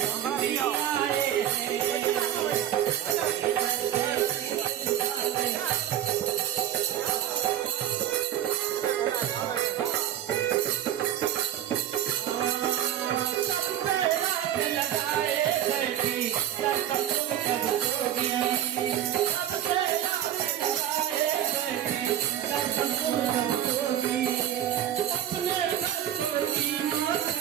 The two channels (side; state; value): left; quieter; 11.2 dB